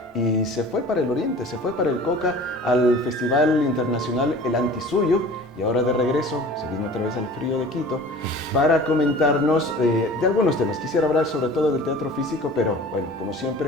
y se fue para el Oriente, se fue para el Coca, al Festival Internacional El Antisuyo, y ahora de regreso se vino otra vez al frío de Quito para comentarnos de algunos temas. Quisiera hablar sobre todo del teatro físico, pero bueno, como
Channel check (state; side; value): normal; both; correlation 0.43